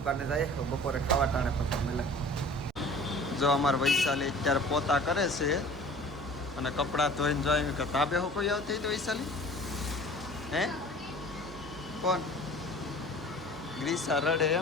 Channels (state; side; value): normal; both; correlation 0.45